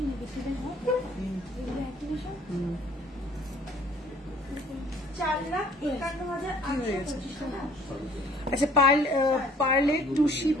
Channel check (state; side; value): normal; both; correlation 0.56